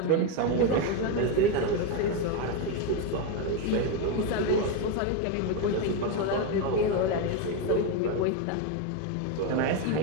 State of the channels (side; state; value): both; different; correlation 0.03